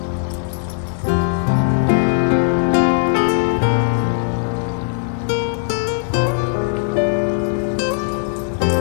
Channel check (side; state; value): right; silent; digital silence